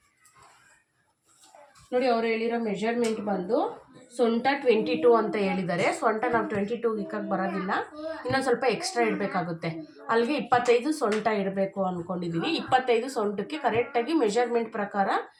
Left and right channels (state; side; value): identical; both; correlation 1.00